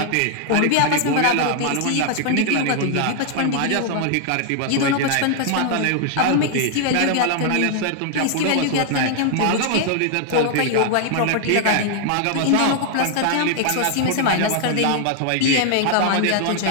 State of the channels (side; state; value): both; different; correlation 0.00